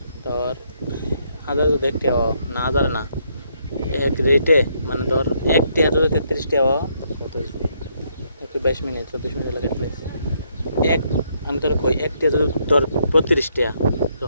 তোর হাজার যদি 1 টাকা না হাজার না এক রেটে মানে ধর 1 টাকা যদি 33 টাকা 22 মিনিট 34 মিনিট লাগে এক আমি তোর কই 1 টাকা যদি তোর 32 টাকা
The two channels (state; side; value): inverted; both; correlation -0.73